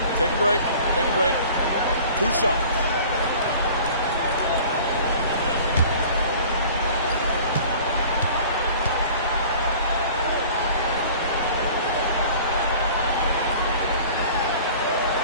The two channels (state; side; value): inverted; both; correlation -0.46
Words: Take a break. Take a break. 2 shots.